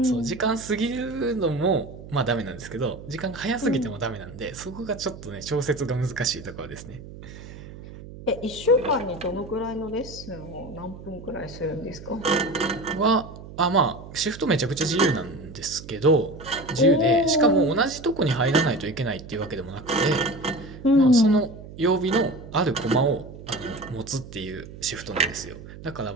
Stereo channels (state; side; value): noise; right; hum, 15 dB below the sound